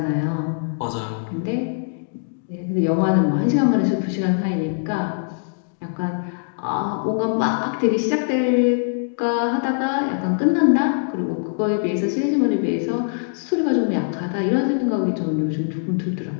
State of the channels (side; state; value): right; silent; digital silence